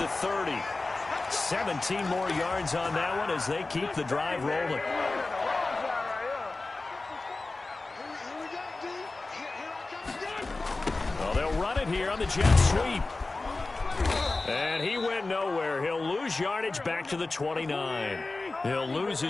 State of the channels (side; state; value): right; quieter; 3.4 dB